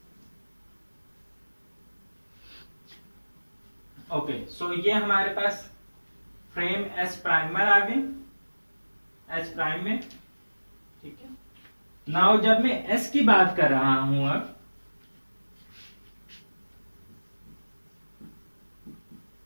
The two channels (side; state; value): both; inverted; correlation -1.00